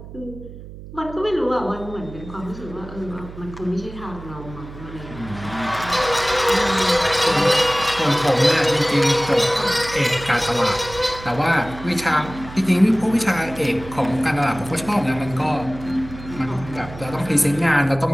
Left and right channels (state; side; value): noise; right; hum, 14 dB below the sound